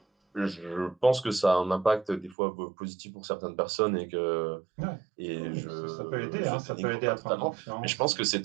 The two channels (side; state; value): left; drops out; at 2.4 s